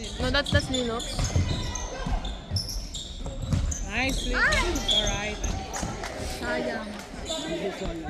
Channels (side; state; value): both; identical; correlation 1.00